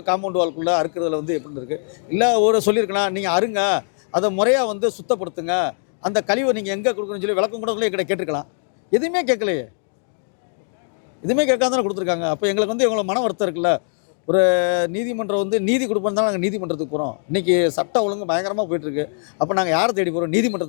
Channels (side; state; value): right; silent; 65 dB below the other